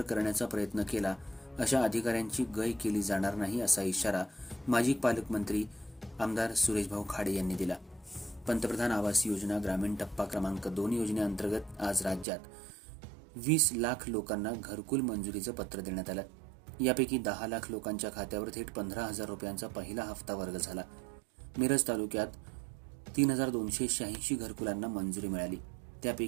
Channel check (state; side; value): drops out; left; at 12.2 s